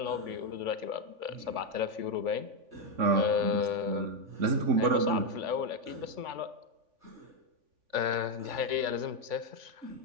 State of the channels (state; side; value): late; left; 3.5 ms